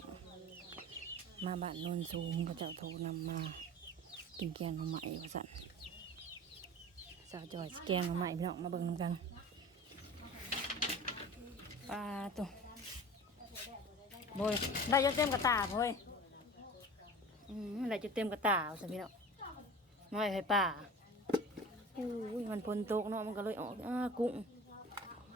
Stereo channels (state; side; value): normal; both; correlation 0.38